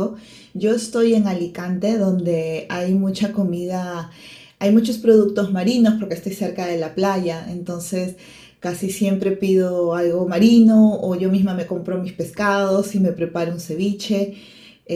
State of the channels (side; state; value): both; identical; correlation 1.00